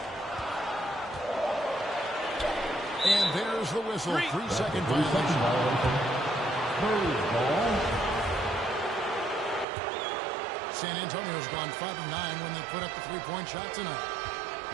And there's the whistle. 3-second violation. San Antonio's gone 5 of 9 when they put up the 3-point shot tonight.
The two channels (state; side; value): drops out; left; at 9.7 s